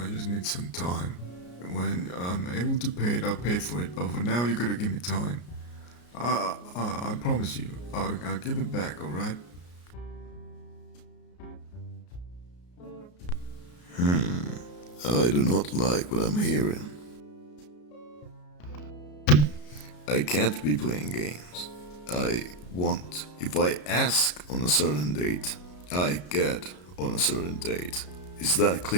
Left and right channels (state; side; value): late; right; 33 ms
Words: just need some time. When I'm able to pay it, I'll pay for it. But for now, you gotta give me time. I promise you, I'll give it back. All right? I do not like what I'm hearing. I can't be playing games. If I ask on a certain date, I get on a certain date. Is that